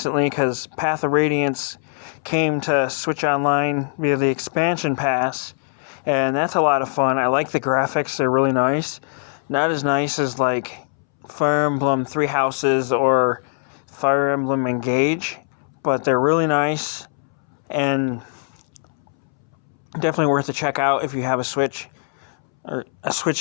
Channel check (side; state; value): right; silent; 64 dB below the other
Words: because Path of Radiance came to Switch Online via the expansion pass, and that's a lot of fun. I like the graphics, they're really nice. Not as nice as like Fire Emblem Three Houses or Fire Emblem Engage, but they're really nice and definitely worth a check out if you have a Switch. Or a